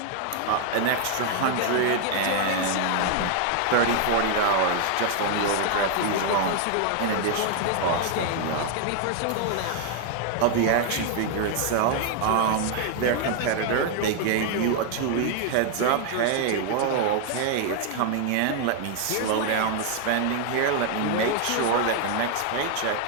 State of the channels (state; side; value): different; both; correlation 0.00